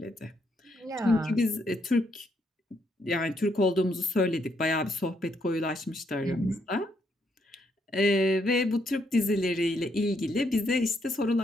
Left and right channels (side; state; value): both; normal; correlation 0.75